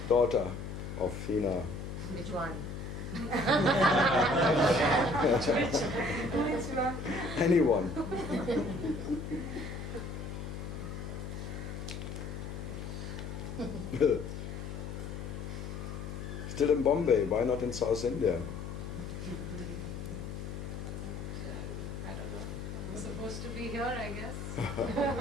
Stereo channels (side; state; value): left; noise; hum, 7 dB below the sound